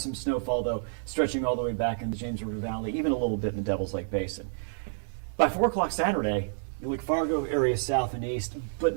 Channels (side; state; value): left; silent; digital silence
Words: snowfall though, stretching all the way back in the James River Valley, even a little bit in the Devil's Lake Basin. By 4 o'clock Saturday, you look Fargo area south and east,